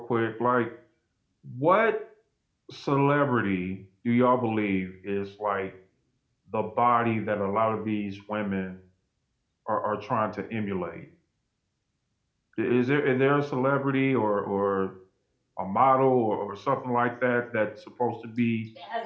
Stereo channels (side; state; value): both; identical; correlation 1.00